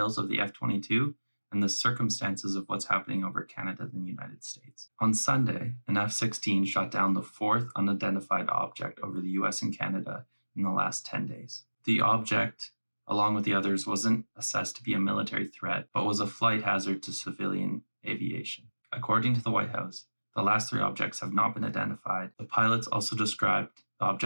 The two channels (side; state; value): both; inverted; correlation -1.00